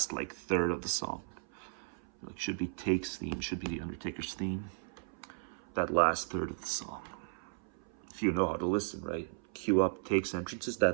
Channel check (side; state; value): left; silent; 54 dB below the other